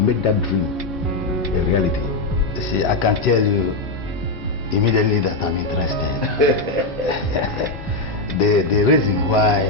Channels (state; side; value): quieter; right; 3.1 dB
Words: that dream a reality. See, I can tell you immediately that I'm interested. the reason